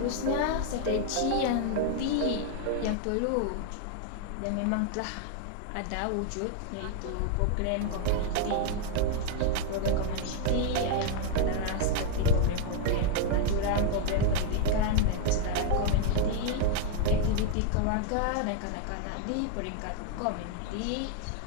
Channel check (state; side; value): different; both; correlation 0.00